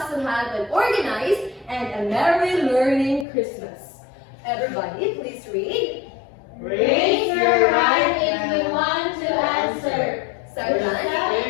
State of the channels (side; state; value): right; drops out; at 3.2 s